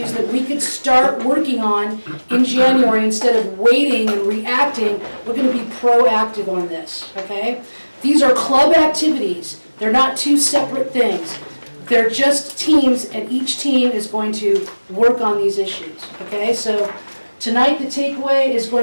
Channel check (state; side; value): inverted; both; correlation -1.00